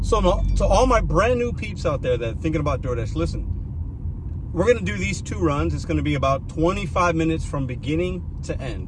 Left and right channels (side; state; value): both; identical; correlation 1.00